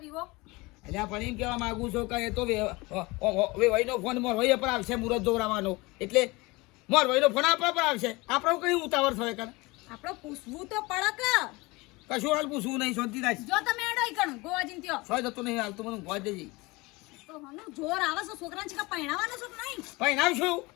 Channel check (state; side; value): quieter; right; 23.6 dB